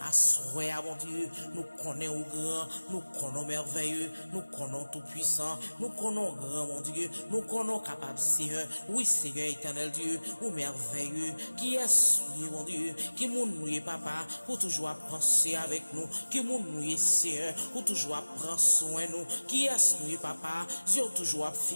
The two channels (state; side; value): inverted; both; correlation -1.00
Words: Assoya, mon Dieu, nous connaissons grand, nous connaissons merveilleux, nous connaissons tout puissant, nous connaissons grand, mon Dieu. Nous connaissons capable, Seigneur. Oui, Seigneur éternel Dieu, ou merveilleux. Qui est mon Dieu? Qui nous papa, pour toujours penser avec nous. Qui nous Seigneur, pour toujours prendre soin de nous. Qui est nous, papa? Dieu toujours